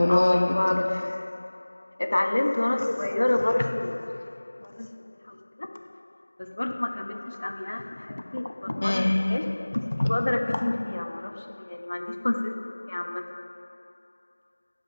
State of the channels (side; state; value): both; inverted; correlation -1.00